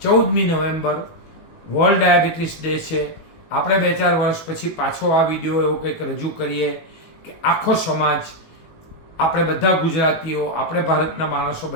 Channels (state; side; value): late; right; 18 ms